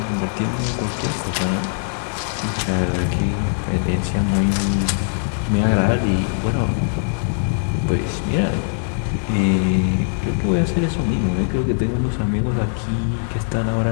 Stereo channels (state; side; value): silent; right; digital silence